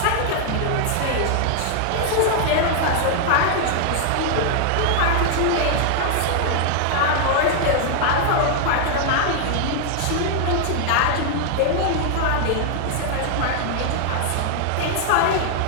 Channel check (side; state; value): both; different; correlation 0.00